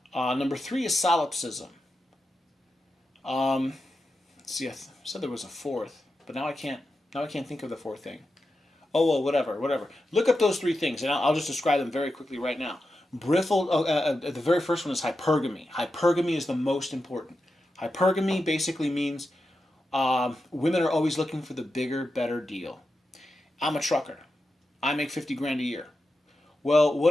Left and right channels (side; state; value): both; normal; correlation 0.89